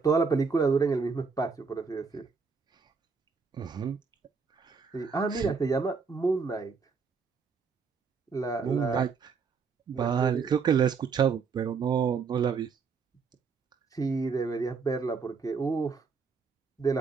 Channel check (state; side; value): quieter; left; 5.3 dB